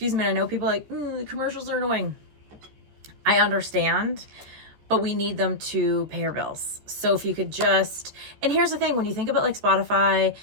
me, I know people are commercials are annoying. I understand, but we need them to pay our bills. So if you could just, and here's the thing, when you think about Spotify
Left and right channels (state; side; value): late; left; 14 ms